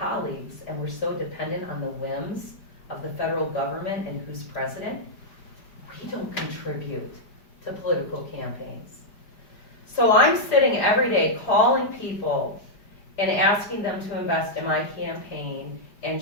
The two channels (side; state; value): right; late; 5.0 ms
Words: and we're so dependent on the whims of the federal government and who's president, we don't contribute to political campaigns. So I'm sitting every day calling people and asking them to invest in my campaign and